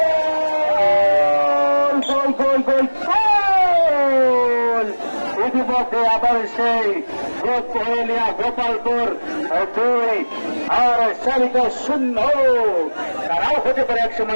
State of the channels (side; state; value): both; inverted; correlation -1.00